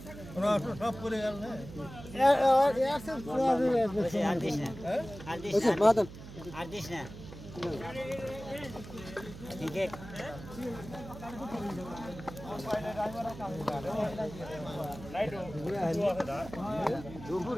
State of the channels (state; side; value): noise; right; hum, 14 dB below the sound